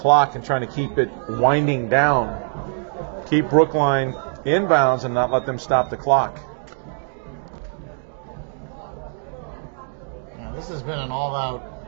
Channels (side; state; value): left; silent; digital silence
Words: and trying to keep it winding down. Keep Brookline inbounds and not let them stop the clock. Yeah, this has been an all-out,